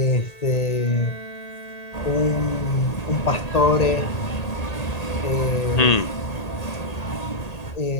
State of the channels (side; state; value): right; late; 1.8 ms